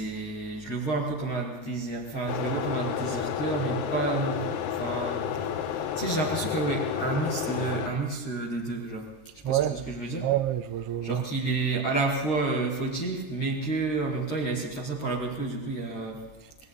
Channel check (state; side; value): late; right; 13 ms